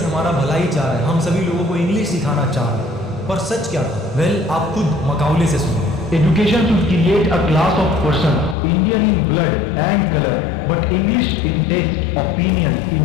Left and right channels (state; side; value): drops out; right; at 8.6 s